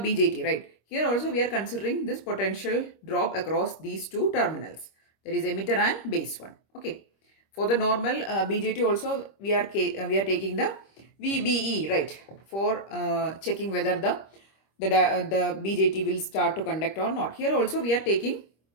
right. Here also we are considering this potential drop across these two terminals, that is emitter and base one. Okay, for the normal BJT also we are taking the VBE, right, for checking whether the BJT will start to conduct or not. Here also we are taking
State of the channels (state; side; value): late; right; 25 ms